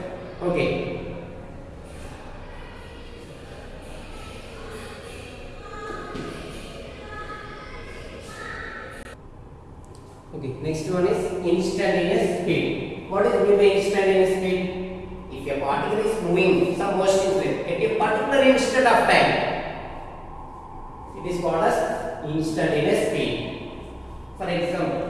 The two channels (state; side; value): identical; both; correlation 1.00